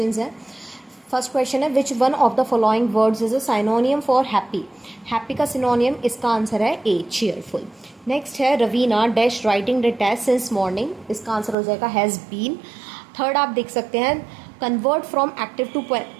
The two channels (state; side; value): drops out; left; at 11.6 s